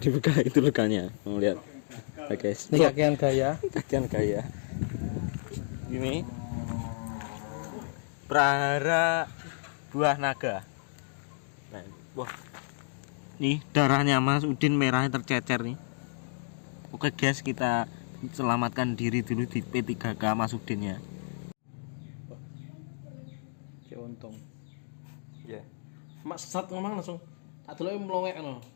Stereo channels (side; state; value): right; silent; digital silence